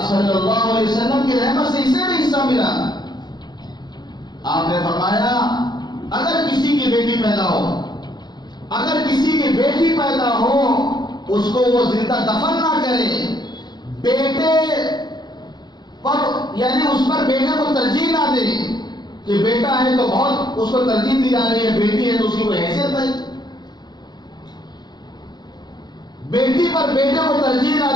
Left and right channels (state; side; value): late; right; 0.21 ms